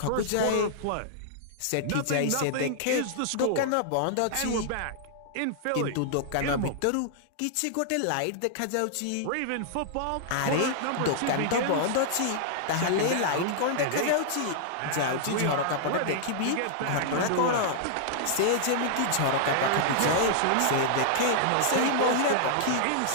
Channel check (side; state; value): both; different; correlation -0.01